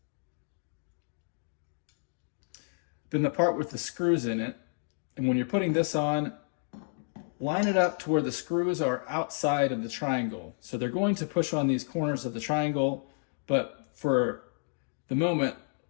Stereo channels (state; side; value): silent; right; digital silence